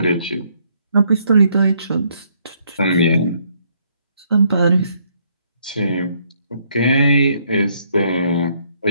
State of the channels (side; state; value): both; inverted; correlation -0.70